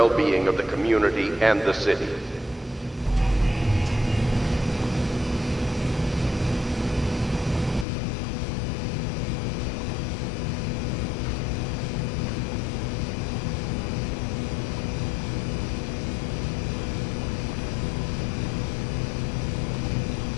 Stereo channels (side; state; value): right; drops out; at 7.9 s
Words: of the community and the city.